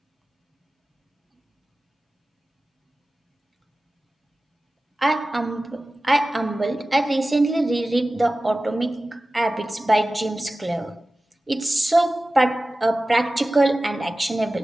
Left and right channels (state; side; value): normal; both; correlation 0.96